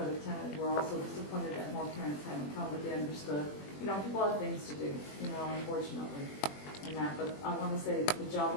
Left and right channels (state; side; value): late; right; 21 ms